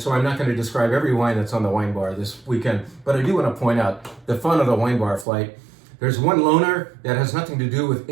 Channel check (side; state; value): left; drops out; at 5.2 s